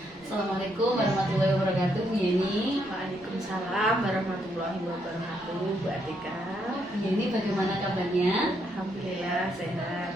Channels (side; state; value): both; normal; correlation 0.75